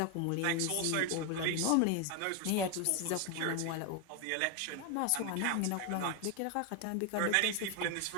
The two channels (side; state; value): both; different; correlation 0.01